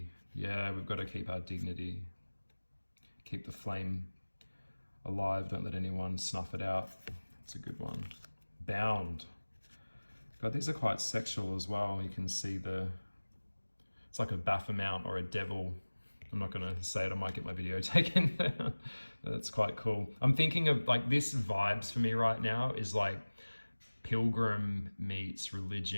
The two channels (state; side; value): inverted; both; correlation -1.00